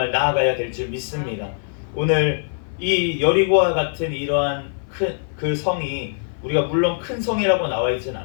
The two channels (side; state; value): right; silent; 55 dB below the other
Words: 나아가야 될 줄 믿습니다. 오늘 이 여리고와 같은 이러한 그 성이 우리가 물론 큰 성이라고 나와 있진